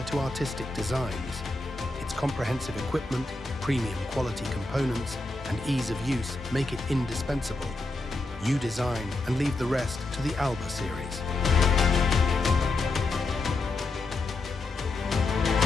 to artistic designs. Its comprehensive equipment, premium quality components, and ease of use make it indispensable. You design and leave the rest to the Alba series.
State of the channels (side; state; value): right; quieter; 3.1 dB